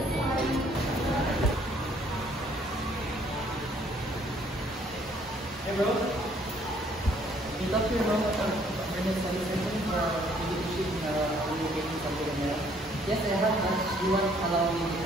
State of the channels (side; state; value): both; normal; correlation 0.63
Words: Hey bro, you talk to your mom about earnest study session for education communication something like that? Yes, I have, but she won't allow me